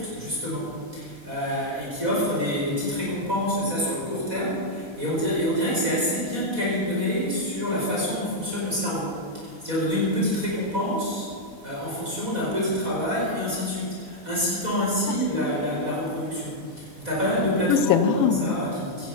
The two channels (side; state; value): left; late; 4.1 ms